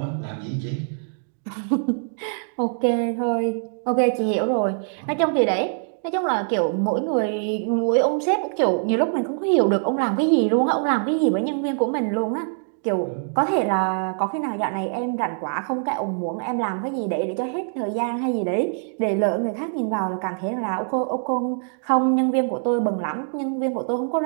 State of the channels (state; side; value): silent; left; digital silence